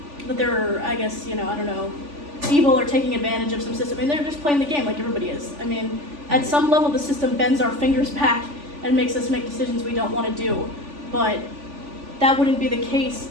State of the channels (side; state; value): left; late; 3.5 ms